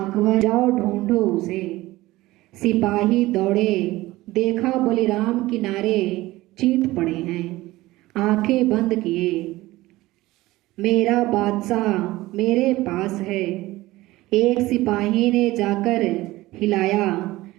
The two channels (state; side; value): quieter; left; 18.3 dB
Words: जाओ ढूंढो उसे। सिपाही दौड़े, देखा बलिराम किनारे चीत पड़े हैं। आंखें बंद किए, मेरा बादशाह मेरे पास है। एक सिपाही ने जाकर हिलाया,